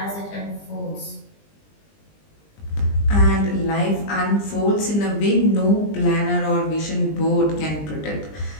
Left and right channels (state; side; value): late; right; 20 ms